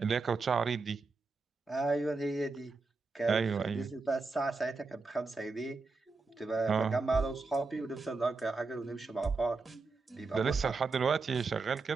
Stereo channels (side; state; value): left; quieter; 4.0 dB